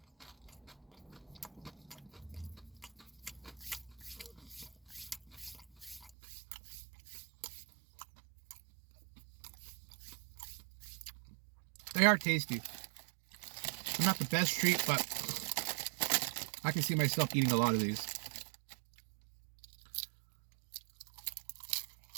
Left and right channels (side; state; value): left; drops out; at 6.1 s